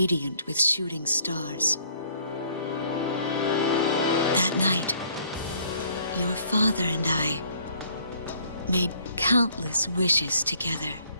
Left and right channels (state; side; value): inverted; both; correlation -0.61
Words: with shooting stars. That night, your father and I made countless wishes together.